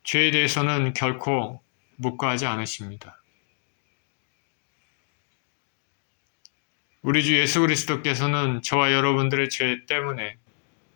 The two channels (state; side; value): silent; right; digital silence